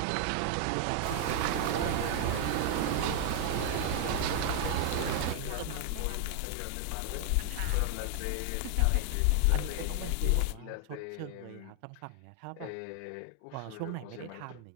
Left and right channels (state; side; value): different; both; correlation 0.00